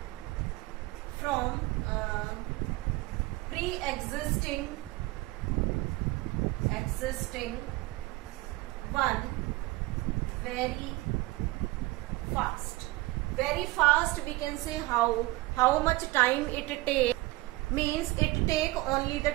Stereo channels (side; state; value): left; quieter; 20.6 dB